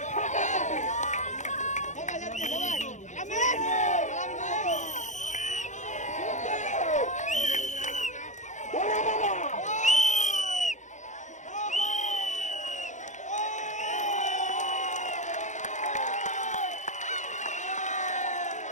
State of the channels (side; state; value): right; late; 0.35 ms